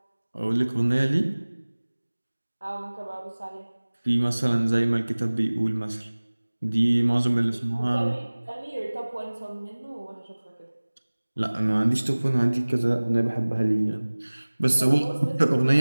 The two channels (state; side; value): inverted; both; correlation -1.00